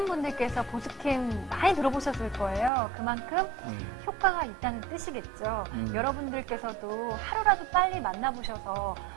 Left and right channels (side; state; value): left; drops out; at 2.7 s